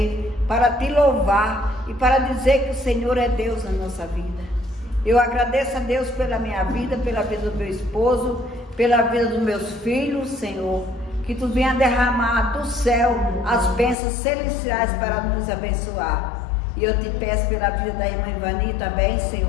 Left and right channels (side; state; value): right; drops out; at 14.0 s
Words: para te louvar e para dizer que o Senhor é Deus na nossa vida. Eu agradeço a Deus pela minha vida, pela vida do meu esposo, pela vida dos meus filhos, Senhor. que tu venha derramar do céu as bênçãos celestiais para nos abençoar. E eu te peço pela vida da irmã Ivani também,